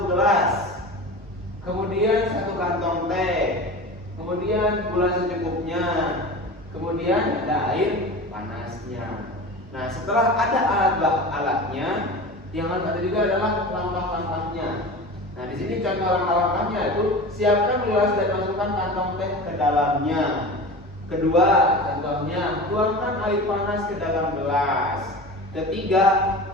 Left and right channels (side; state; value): both; normal; correlation 0.33